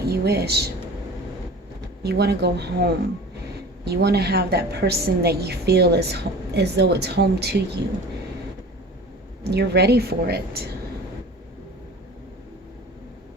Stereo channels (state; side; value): normal; both; correlation 0.40